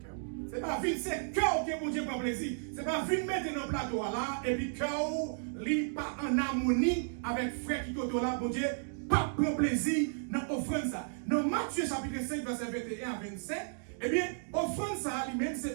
C'est pas vite, c'est cœur que bon Dieu prend plaisir. C'est pas vite mettre dans le plateau là, et puis cœur, lui, pas en harmonie avec frère qui côté là, bon Dieu. Pas prendre plaisir dans l'offrande ça. Dans Matthieu chapitre 5, verset 21 à 27, eh bien, offrande ça lui-même,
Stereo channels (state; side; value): silent; left; digital silence